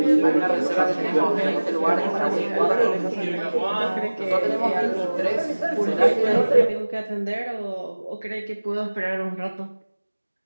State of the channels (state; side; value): inverted; both; correlation -1.00